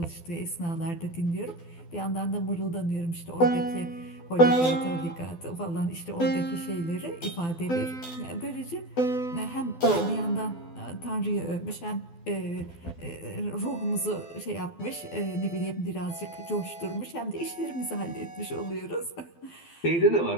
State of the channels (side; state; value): right; late; 12 ms